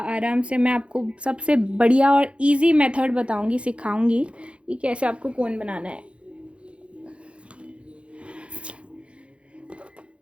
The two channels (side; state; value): left; late; 0.059 ms